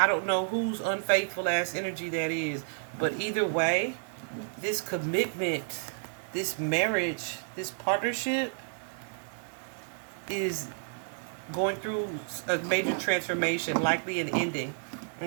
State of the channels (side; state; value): left; silent; digital silence